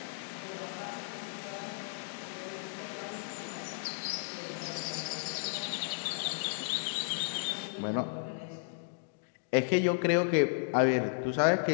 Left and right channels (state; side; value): silent; right; digital silence